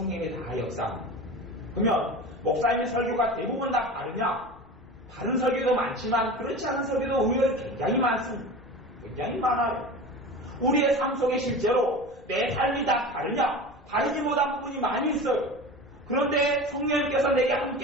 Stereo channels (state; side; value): normal; both; correlation 0.32